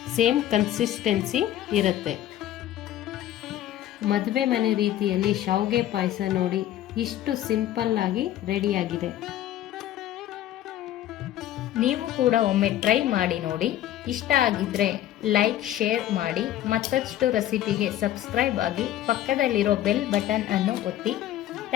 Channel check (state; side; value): quieter; right; 12.6 dB